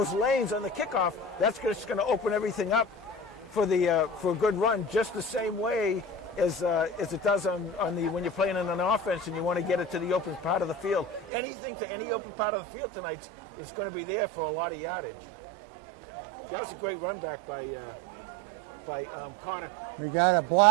lanes on the kickoff, that's just going to open everything up for a good run, just the same way as it does when you're playing in an offense and you want to get it to the open part of the field. Anything to any open part of the field tonight is going to be there for a lot of yardage. That was a great run back by Connor. We got a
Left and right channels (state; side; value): drops out; left; at 11.3 s